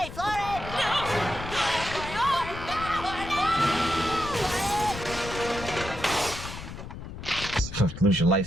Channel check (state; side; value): noise; left; rumble, 10 dB below the sound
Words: floor it. No. Lose your